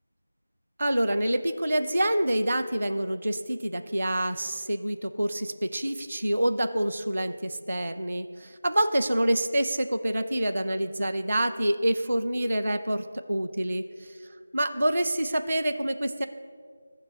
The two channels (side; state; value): both; inverted; correlation -0.96